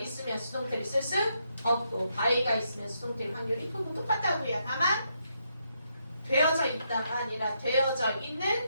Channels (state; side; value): inverted; both; correlation -0.79